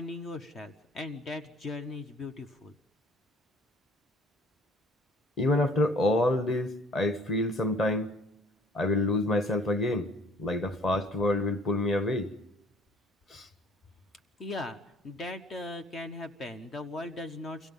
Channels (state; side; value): normal; both; correlation 0.55